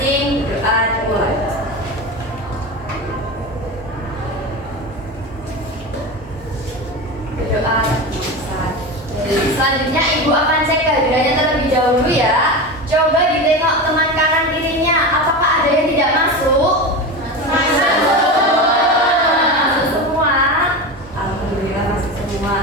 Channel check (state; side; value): normal; both; correlation 0.24